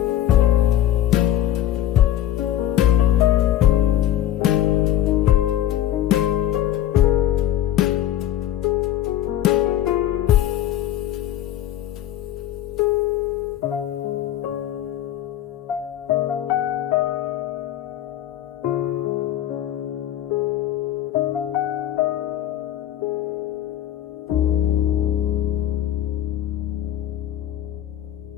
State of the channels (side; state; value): right; quieter; 12.2 dB